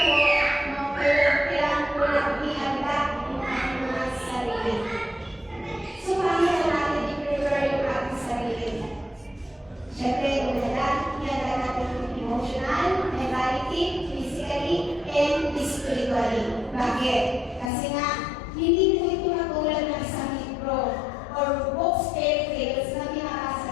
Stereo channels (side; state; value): right; drops out; at 17.7 s